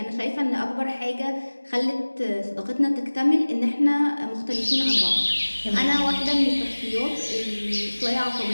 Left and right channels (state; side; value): inverted; both; correlation -1.00